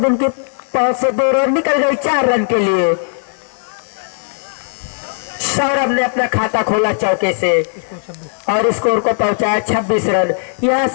उनके पास से 2 रन निकल गई 4 रन के लिए। सौरभ ने अपना खाता खोला चौके से और स्कोर को पहुंचाया 26 रन। यहां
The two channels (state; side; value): silent; right; digital silence